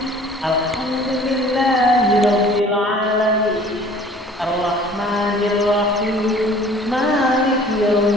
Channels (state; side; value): normal; both; correlation 0.50